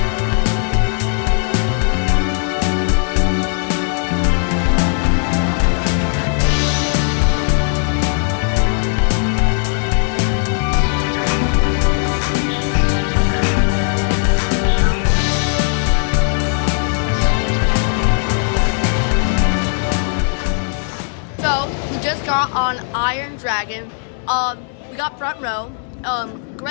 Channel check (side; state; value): right; silent; digital silence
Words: So we just got on Iron Dragon. We got front row.